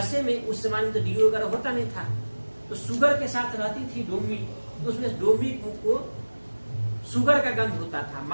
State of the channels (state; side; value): inverted; both; correlation -1.00